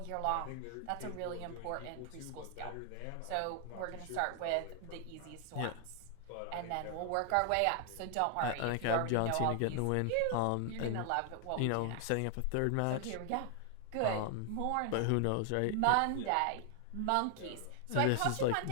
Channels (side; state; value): both; different; correlation 0.00